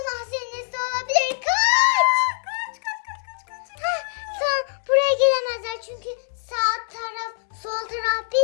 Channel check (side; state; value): right; silent; digital silence